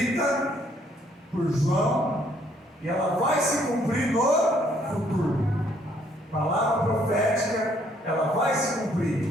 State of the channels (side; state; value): both; normal; correlation 0.66